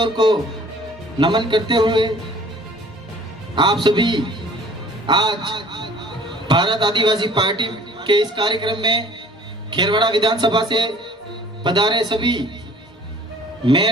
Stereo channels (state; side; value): normal; both; correlation 0.51